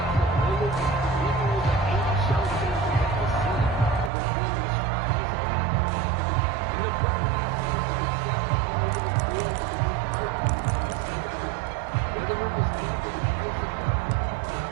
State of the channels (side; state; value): left; drops out; at 4.1 s